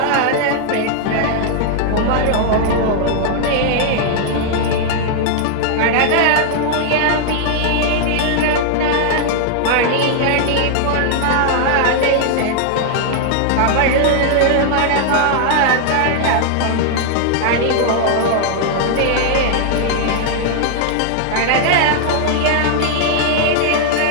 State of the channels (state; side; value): different; both; correlation -0.01